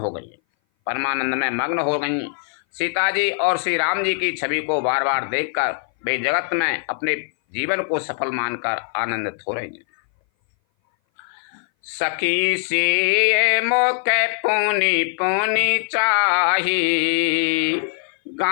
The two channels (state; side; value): silent; right; 59 dB below the other